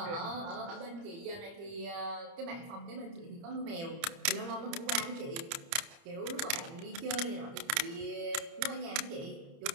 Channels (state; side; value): late; left; 30 ms